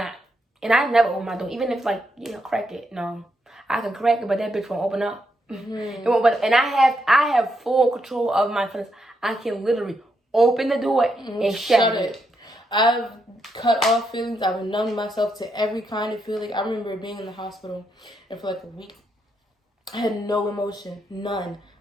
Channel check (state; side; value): normal; both; correlation 0.80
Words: And I never open my door, even if, like, crack it. No, I can crack it, but that bitch won't open up. It won't. And I have full control of my feelings. I can literally open the door and shut it. I've cut off feelings. I've numbed myself to every kind of feeling. I remember being in the hospital, and for like a week, I had no emotion, none.